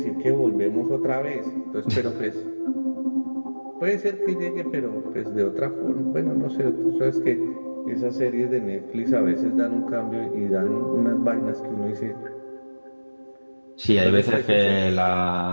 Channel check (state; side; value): inverted; both; correlation -1.00